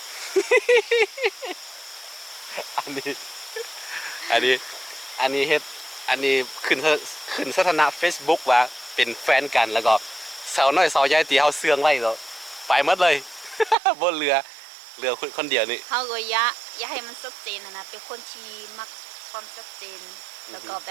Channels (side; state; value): left; drops out; at 13.8 s